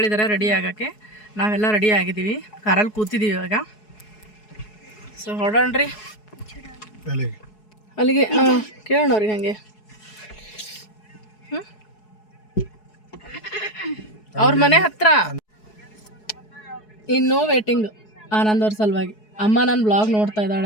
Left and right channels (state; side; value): late; right; 4.7 ms